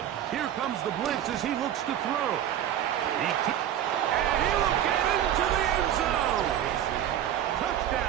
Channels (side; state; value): left; quieter; 11.0 dB